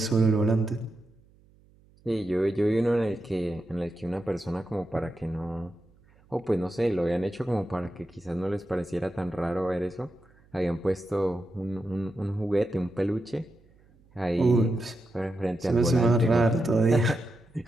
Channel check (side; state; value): right; noise; hum, 30 dB below the sound